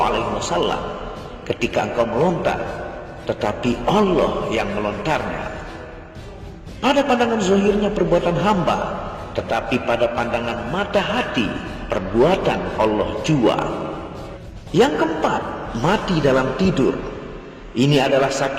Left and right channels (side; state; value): both; identical; correlation 1.00